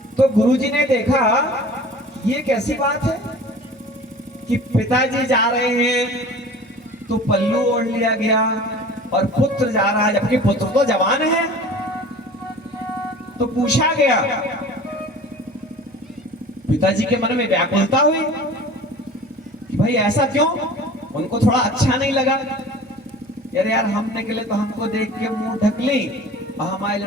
तो गुरुजी ने देखा ये कैसी बात है कि पिताजी जा रहे हैं तो पल्लू ओढ़ लिया गया और पुत्र जा रहा है, जबकि पुत्र तो जवान है। तो पूछा गया, पिताजी के मन में व्याकुलता हुई कि भाई ऐसा क्यों, उनको थोड़ा अच्छा नहीं लगा। यार हम निकले तो हमको देख के मुंह ढक ली और हमारे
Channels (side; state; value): both; normal; correlation 0.42